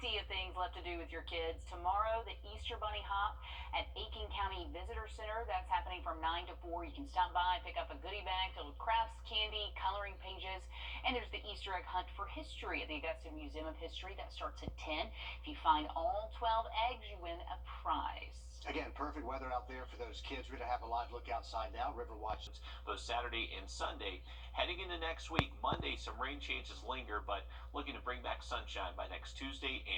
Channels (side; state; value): both; identical; correlation 1.00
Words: of things left to do with your kids. Tomorrow, the Easter Bunny Hop at Aiken County Visitor Visitor Center. That's happening from 9 to 4. You can stop by, pick up a goodie bag filled with crafts, candy, coloring pages, and there's the Easter egg hunt for history at the Augusta Museum of History. That starts at 10. If you find all 12 eggs, you win a prize. Again, perfect weather out there for those kids. We're going to have a live look outside now. River Watch. Both Saturday and Sunday. Heading into next week, Monday, some rain chances linger, but looking to bring back sunshine by next Tuesday